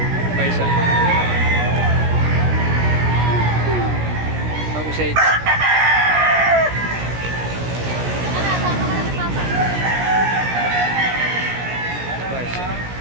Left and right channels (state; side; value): late; left; 17 ms